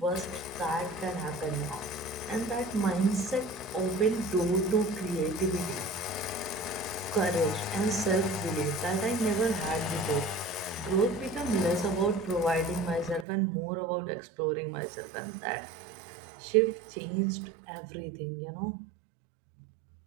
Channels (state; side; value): drops out; left; at 13.2 s